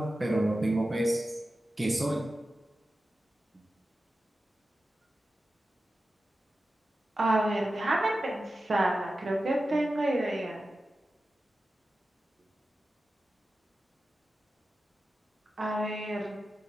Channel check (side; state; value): both; normal; correlation 0.93